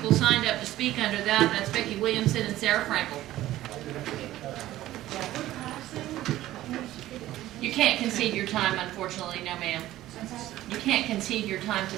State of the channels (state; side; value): quieter; left; 14.9 dB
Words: signed up to speak under that. That's Becky Williamson and Sarah Frankel. You can't concede your time, unfortunately, no ma'am. You can't concede your time to